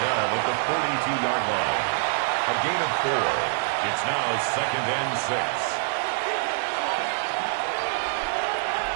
down at the 42-yard line. A gain of 4. It's now 2nd and 6.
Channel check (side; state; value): left; silent; digital silence